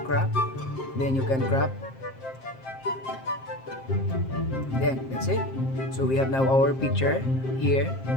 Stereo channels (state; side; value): late; right; 7.6 ms